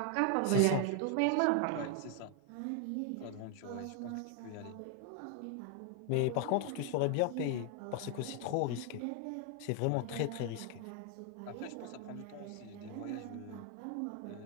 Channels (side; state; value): both; different; correlation 0.00